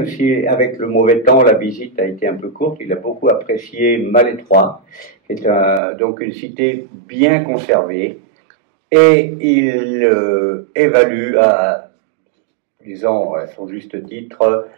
si avec le mauvais temps, la visite a été un peu courte, il a beaucoup apprécié Malétroit, qui est donc une cité bien conservée, et il évalue disons à son juste titre,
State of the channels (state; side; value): drops out; left; at 5.8 s